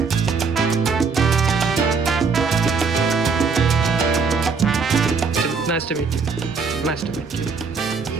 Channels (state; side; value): quieter; left; 5.1 dB